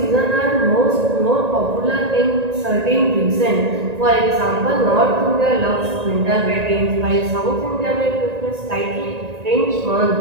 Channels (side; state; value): left; late; 1.9 ms